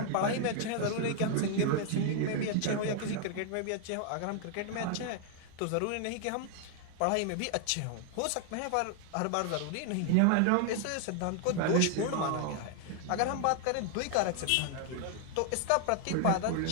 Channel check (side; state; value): both; different; correlation 0.00